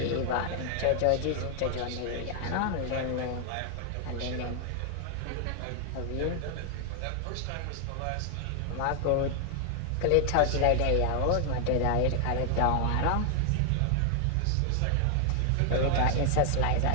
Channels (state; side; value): different; both; correlation 0.00